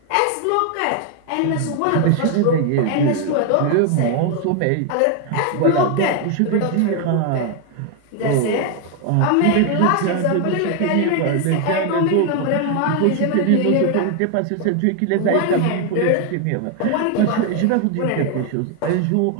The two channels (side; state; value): both; different; correlation 0.01